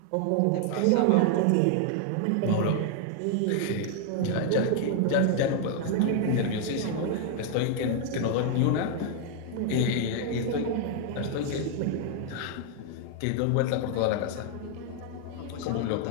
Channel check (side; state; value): both; different; correlation 0.00